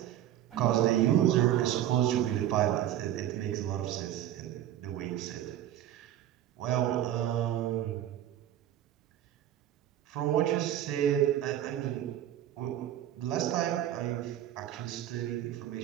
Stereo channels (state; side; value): quieter; left; 11.9 dB